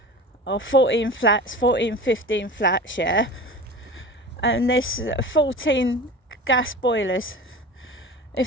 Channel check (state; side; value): normal; both; correlation 0.35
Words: Or 14 flats, 15 flats, yeah? And there's 14 gas boilers.